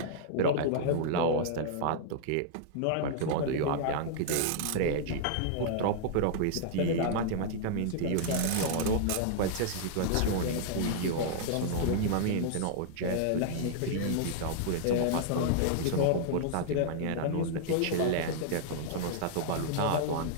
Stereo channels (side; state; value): both; different; correlation -0.01